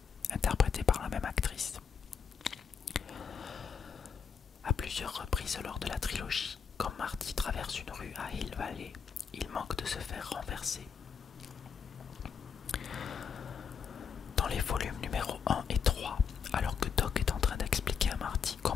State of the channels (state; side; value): quieter; right; 6.6 dB